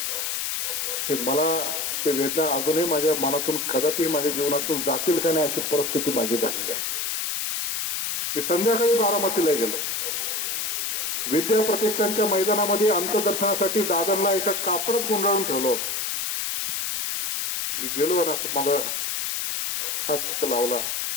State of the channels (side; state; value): left; noise; hiss, 1 dB below the sound